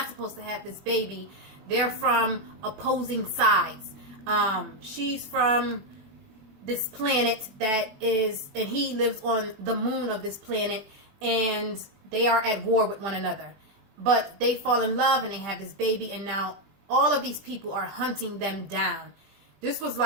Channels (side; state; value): left; late; 20 ms